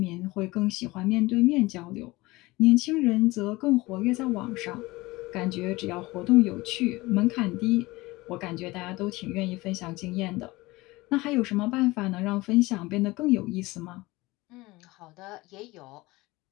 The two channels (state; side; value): quieter; right; 21.0 dB